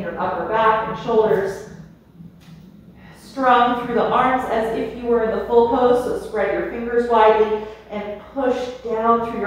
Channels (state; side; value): identical; both; correlation 1.00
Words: upper back and shoulders. Strong through the arms as if you were in the full pose, so spread your fingers widely and push down through